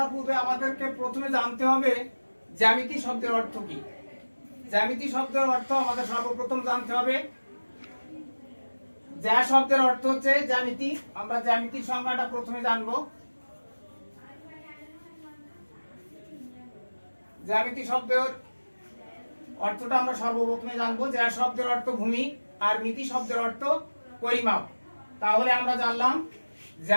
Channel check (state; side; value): inverted; both; correlation -1.00